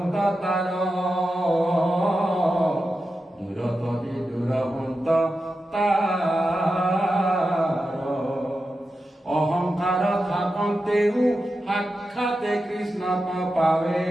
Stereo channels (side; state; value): both; normal; correlation 0.90